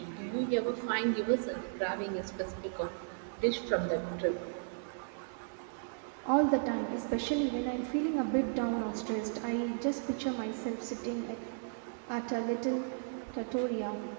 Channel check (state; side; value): silent; left; digital silence